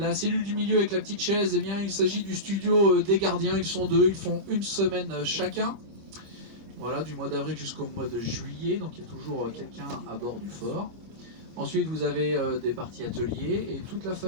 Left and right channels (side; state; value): left; late; 25 ms